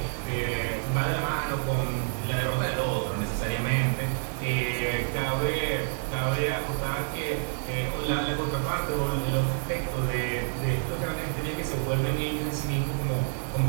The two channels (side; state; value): left; silent; 59 dB below the other